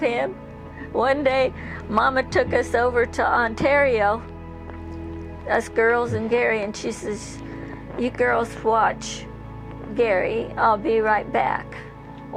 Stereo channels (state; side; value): identical; both; correlation 1.00